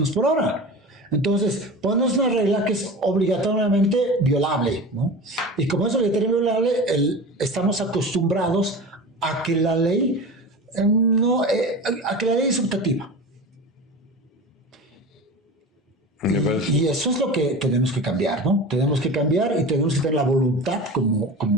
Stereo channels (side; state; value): both; normal; correlation 0.32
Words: por hora. Entonces, pones una regla que es obligatoriamente violable, ¿no? Y como es obligatoriamente violable, estamos acostumbrados a que la ley a que la ley es optativa. Y eso es lo que tenemos que cambiar, ¿no? Tenemos que cambiar y tenemos que tener la voluntad